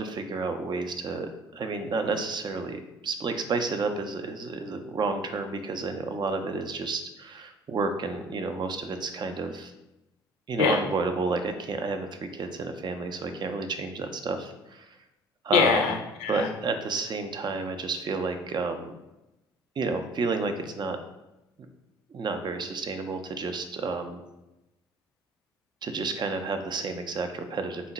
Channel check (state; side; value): normal; both; correlation 0.48